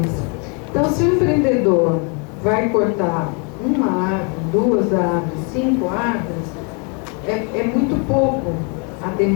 Então, se o empreendedor vai cortar uma árvore, 2 árvores, 5 árvores, é muito pouco. A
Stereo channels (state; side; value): quieter; right; 35.1 dB